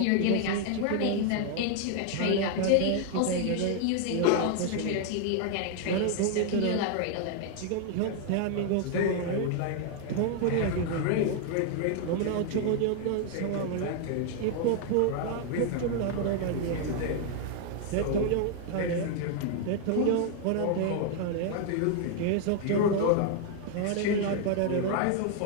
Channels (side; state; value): both; different; correlation 0.00